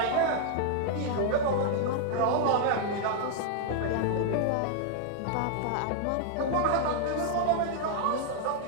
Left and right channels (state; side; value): different; both; correlation 0.00